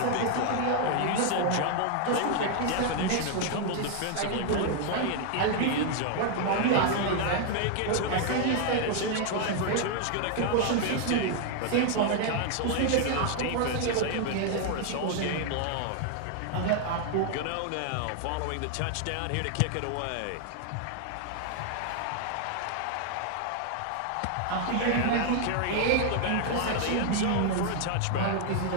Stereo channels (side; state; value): both; different; correlation 0.00